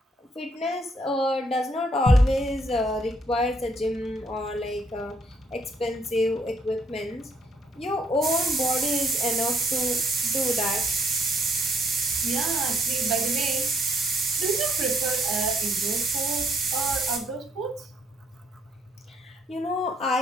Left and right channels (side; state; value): both; normal; correlation 0.69